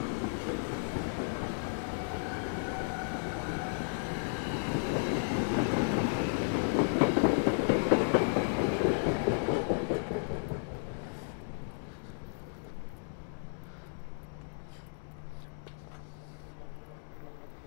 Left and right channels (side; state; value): right; silent; digital silence